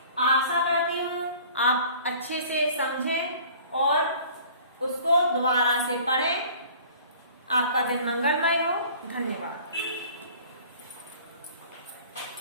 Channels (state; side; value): inverted; both; correlation -0.48